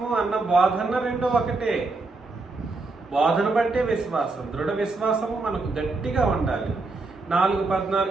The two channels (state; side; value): quieter; left; 3.5 dB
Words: అన్న బోధన రెండు ఒకటే. బోధన బట్టే విశ్వాసం, దృఢ విశ్వాసము మనకు గట్టిగా ఉండాలి.